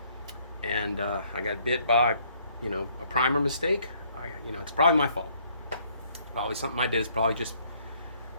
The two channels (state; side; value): inverted; both; correlation -0.65